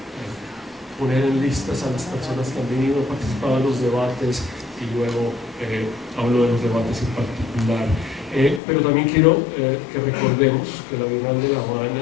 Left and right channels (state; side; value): drops out; right; at 8.6 s